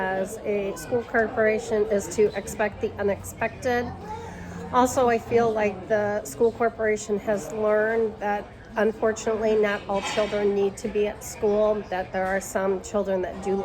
a school corporation, is to expect the unexpected. Also, I feel like the school corporation has learned that unfortunately not all children need to be at school, that there are some children that do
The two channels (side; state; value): both; identical; correlation 1.00